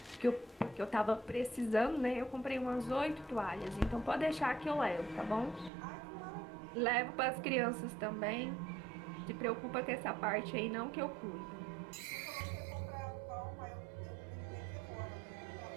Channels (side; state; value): left; drops out; at 5.7 s